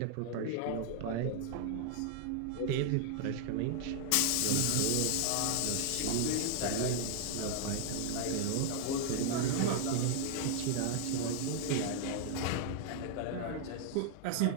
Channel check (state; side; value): different; both; correlation 0.00